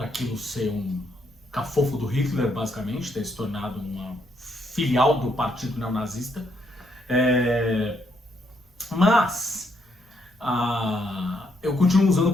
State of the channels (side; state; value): both; normal; correlation 0.74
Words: aquilo ser um cafofo do Hitler, basicamente, ter se tornado uma filial do partido neonazista. Mas eu continuo usando o